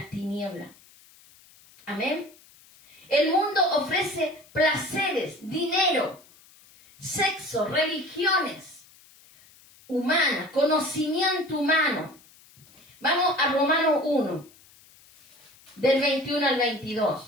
tinieblas. Amén. El mundo ofrece placeres, dinero, sexo, religiones humanas, conocimiento humano. Vamos a Romanos 1, del 21 al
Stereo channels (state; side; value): noise; left; hiss, 26 dB below the sound